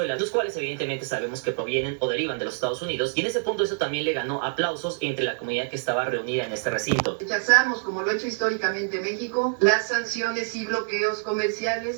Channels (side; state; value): left; silent; 61 dB below the other